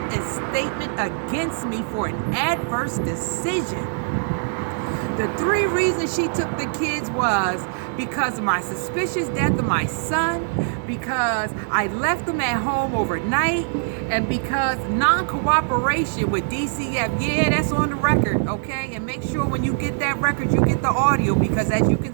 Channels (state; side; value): silent; left; digital silence